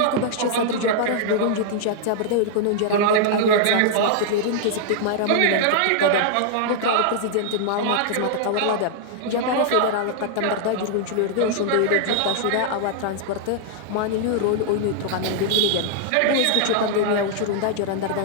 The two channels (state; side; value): different; both; correlation -0.01